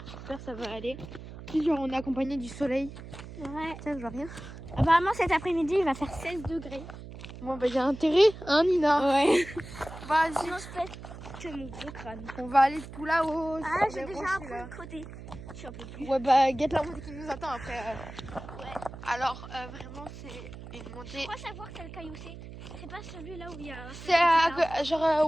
J'espère que ça va aller. Puis genre on est accompagné du soleil. Ouais. Tiens, je vois rien. Apparemment cet après-midi il va faire 16 degrés. Bon bah j'ai intérêt, hein Nina. Ouais. Vas-y. Sinon je pète que mon gros crâne. On va aller tout là-haut. Ah sur j'ai les déjà rochers, un peu là. de côté. Je suis un peu plus. Ouais bah guette la montée qui nous attend après. Ouais. Alors vraiment c'est une montée. Je crois savoir quel caillou c'est. C'est pas celui là où il y a. C'est genre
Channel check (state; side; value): noise; right; hum, 13 dB below the sound